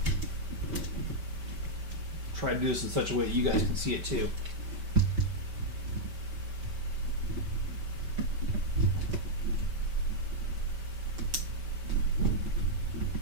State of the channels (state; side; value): late; left; 5.1 ms